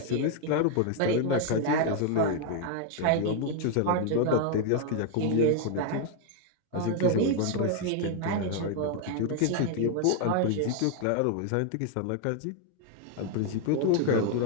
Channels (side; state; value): both; different; correlation 0.00